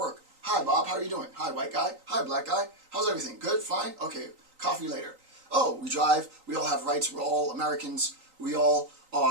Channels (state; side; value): late; left; 3.9 ms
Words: Hi, Bob, how are you doing? Hi, white guy. Hi, black guy. How's everything? Good? Fine? Okay, coffee later. Oh, we drive. We all have rights. We're all Americans. We all